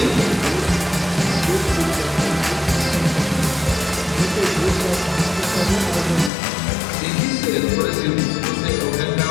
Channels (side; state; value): right; drops out; at 6.3 s